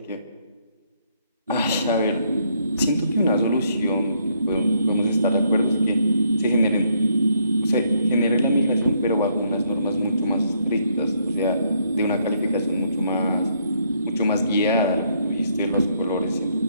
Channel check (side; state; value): both; inverted; correlation -0.71